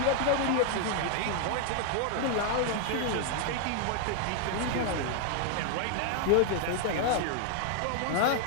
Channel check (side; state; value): both; different; correlation 0.00